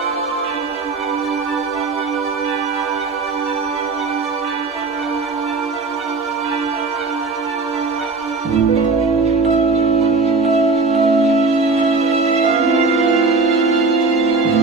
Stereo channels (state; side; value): quieter; left; 4.0 dB